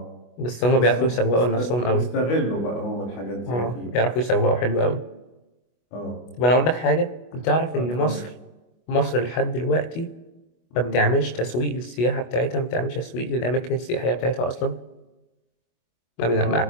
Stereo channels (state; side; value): late; right; 25 ms